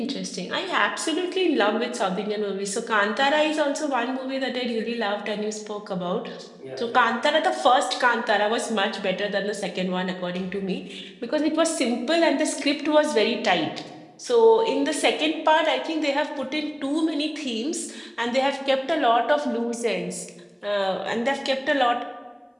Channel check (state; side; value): identical; both; correlation 1.00